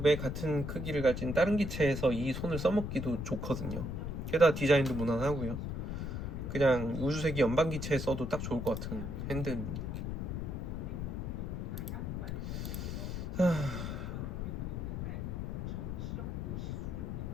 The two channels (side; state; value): left; noise; rumble, 3 dB below the sound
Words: 같은 크기를 가진 다른 기체에서 이 손을 써먹기도 좋거든요. 게다가 디자인도 무난하고요. 그냥 우주세기 연방 기체에 써도 딱 좋을 것 같은 핸드입니다.